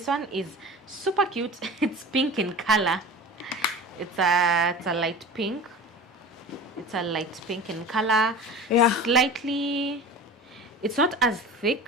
one is super cute. It's pink in color. It's a light pink. It's a light pink in color. Yeah. Slightly, it's not as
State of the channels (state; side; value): normal; both; correlation 0.35